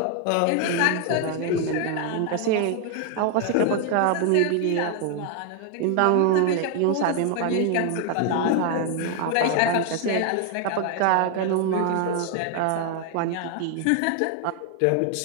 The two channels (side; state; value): both; different; correlation 0.00